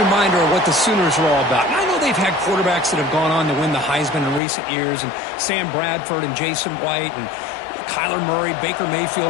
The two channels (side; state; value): right; drops out; at 4.4 s